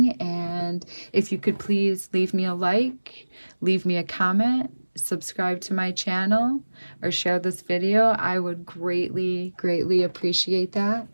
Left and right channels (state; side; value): inverted; both; correlation -1.00